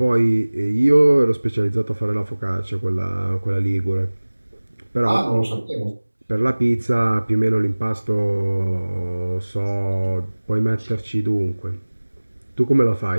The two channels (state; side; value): inverted; both; correlation -1.00